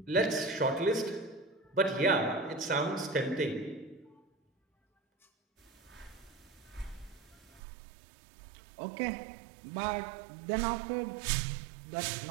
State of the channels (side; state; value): left; drops out; at 7.6 s